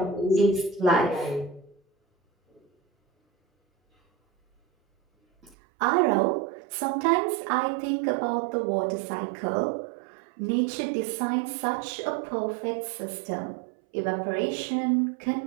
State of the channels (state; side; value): drops out; left; at 5.6 s